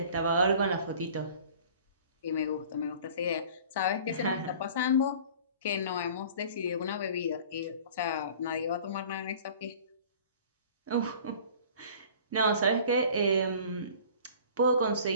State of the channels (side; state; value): both; inverted; correlation -0.46